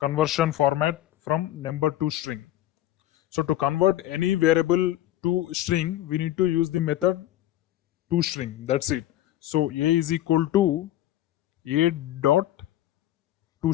format from number to string. So to convert any variable to string, we need to use the method toString. That's it. So a is equal to a dot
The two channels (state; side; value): quieter; right; 13.6 dB